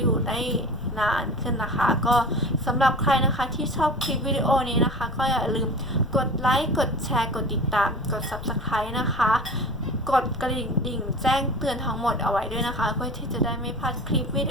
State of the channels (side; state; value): left; noise; rumble, 13 dB below the sound